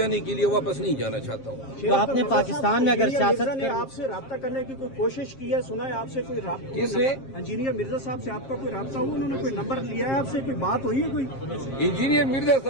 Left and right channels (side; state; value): right; late; 7.5 ms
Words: کے لیے واپس نہیں جانا چاہتا ہوں. تو آپ نے پاکستان میں اگر سیاست نے آپ سے رابطہ کرنے کی کوئی کوشش کی ہے؟ سنا ہے آپ سے کوئی رابطہ؟ کس نے؟ انجینئر مرزا صاحب سے آپ کا کوئی رابطہ ہوا؟ انہوں نے کوئی نمبر لیا ہے آپ سے؟ کوئی بات ہوئی ہے کوئی؟ انجینئر مرزا